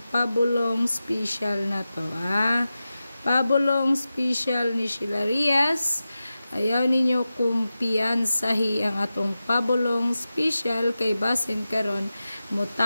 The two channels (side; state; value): both; inverted; correlation -0.93